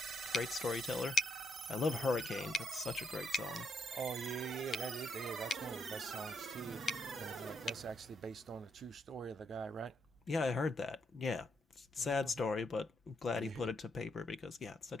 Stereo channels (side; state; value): both; normal; correlation 0.76